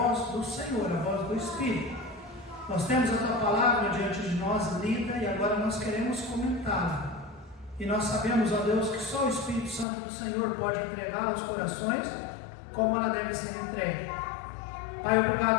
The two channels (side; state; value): right; drops out; at 9.9 s